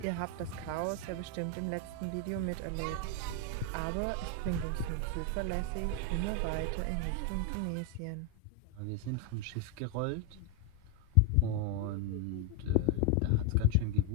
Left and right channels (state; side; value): different; both; correlation 0.01